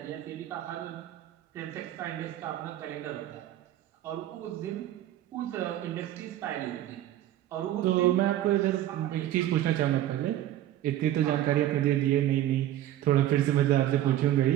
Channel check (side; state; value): left; quieter; 13.0 dB